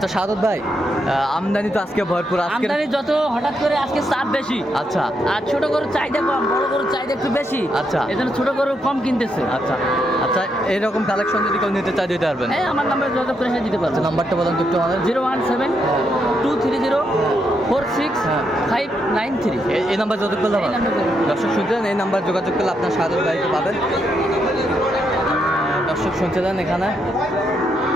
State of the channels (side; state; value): both; normal; correlation 0.79